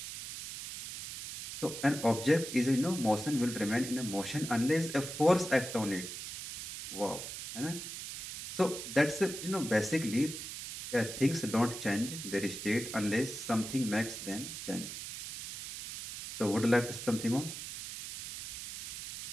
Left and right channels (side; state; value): right; noise; hiss, 8 dB below the sound